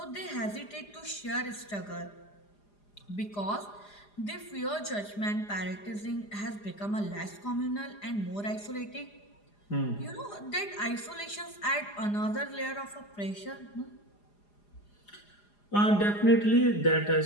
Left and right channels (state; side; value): late; right; 4.9 ms